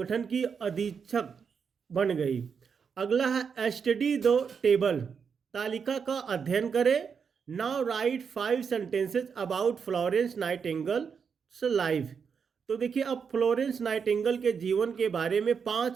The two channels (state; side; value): quieter; left; 6.3 dB